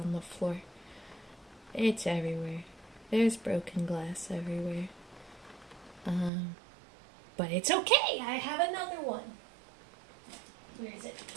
the floor. It's everywhere. There's broken glass everywhere. But it's okay. I have another one. Where is it?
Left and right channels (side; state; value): left; drops out; at 6.3 s